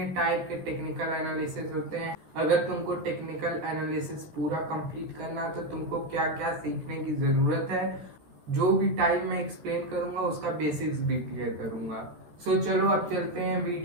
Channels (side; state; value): left; late; 13 ms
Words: टाइप के टेक्निकल एनालिसिस होते हैं। अगर तुमको टेक्निकल एनालिसिस पूरा कंप्लीट करना है तो तुमको क्या क्या सीखने की जरूरत है। जो भी टाइम मैं एक्सप्लेन करूंगा उसका बेसिक्स भी क्लियर करूंगा। चलो अब चलते हैं,